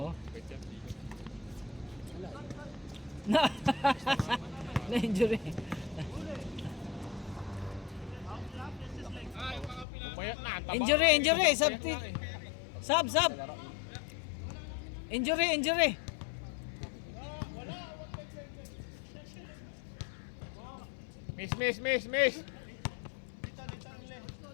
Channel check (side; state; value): right; drops out; at 9.9 s